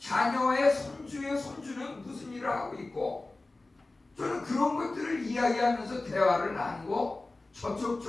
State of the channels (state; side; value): quieter; right; 3.1 dB